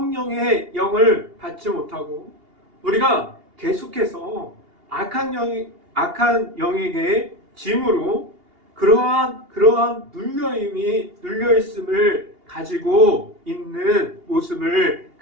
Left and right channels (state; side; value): late; left; 2.8 ms